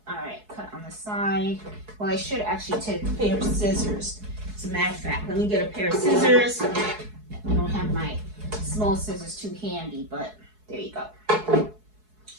All right, cut on the side. Well, I should actually take a pair of scissors. As a matter of fact, let me get a pair of scissors. I don't have my small scissors too handy, but there you go.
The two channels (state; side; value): late; left; 4.7 ms